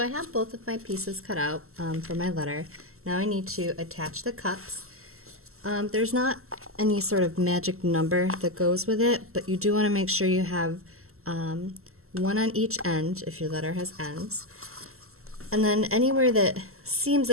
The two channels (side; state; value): left; late; 0.63 ms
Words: have both of my pieces cut out for my letter. Now I need to attach the cups. There's not any sort of magic number that goes with it, but you do want to make sure you have one on each end if your letter has ends. And then anywhere that seems